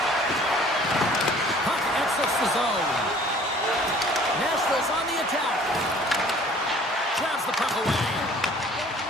Puck exits the zone. Nashville's on the attack. Grabs the puck away.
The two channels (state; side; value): normal; both; correlation 0.52